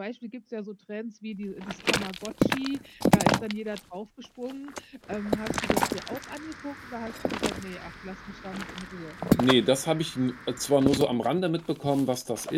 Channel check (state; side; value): identical; both; correlation 1.00